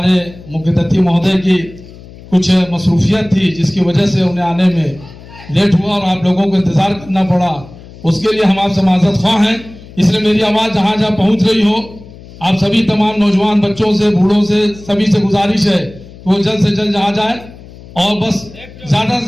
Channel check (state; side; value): noise; left; hum, 19 dB below the sound